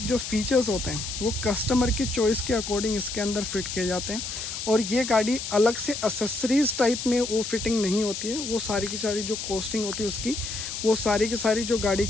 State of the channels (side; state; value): left; noise; hiss, 6 dB below the sound